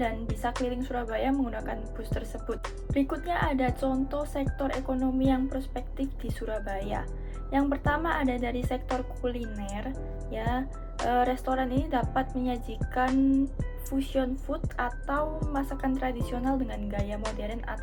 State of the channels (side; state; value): both; identical; correlation 1.00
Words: dan bisa keliling Surabaya menggunakan bus tersebut. Berikutnya ada contoh sektor ekonomi yang prospektif di Surabaya. Yang pertama ada dari sektor kuliner ya. Restoran ini dapat menyajikan fusion food atau masakan tradisional dengan gaya modern